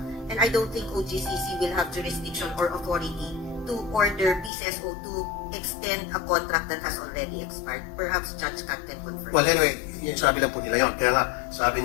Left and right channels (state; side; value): drops out; right; at 4.5 s